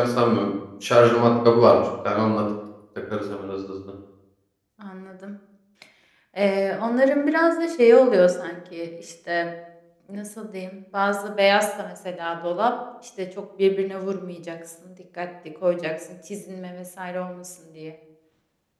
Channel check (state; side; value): identical; both; correlation 1.00